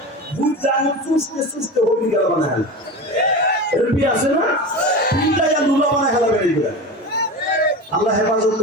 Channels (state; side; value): normal; both; correlation 0.28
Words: ভূত জাহান্নাম চুষতে চুষতে হবি গেল বানায়। এরকম পীর আছে না, পীরটা ইয়া লুলা বানায় খেলাবে এইগুলা। আল্লাহ হেফাজত